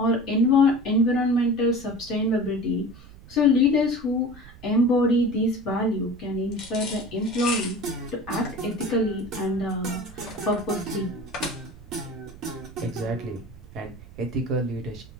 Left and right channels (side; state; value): right; noise; rumble, 19 dB below the sound